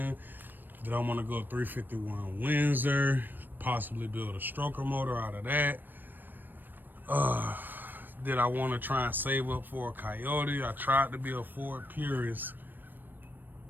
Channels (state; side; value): late; left; 0.092 ms